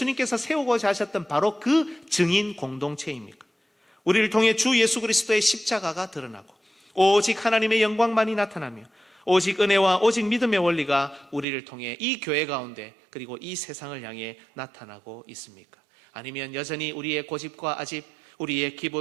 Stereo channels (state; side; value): drops out; left; at 11.5 s